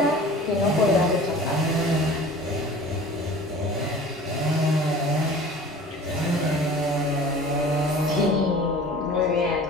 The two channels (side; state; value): both; normal; correlation 0.43